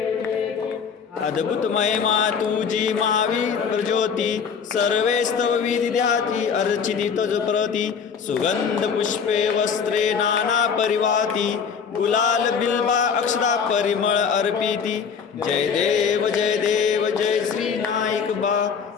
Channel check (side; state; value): right; quieter; 6.4 dB